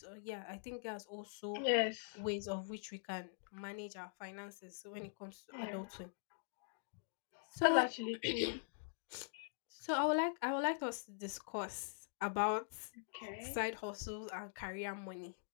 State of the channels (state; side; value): silent; right; digital silence